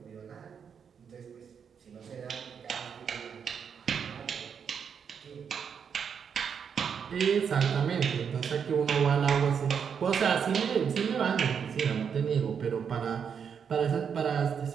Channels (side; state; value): left; quieter; 7.1 dB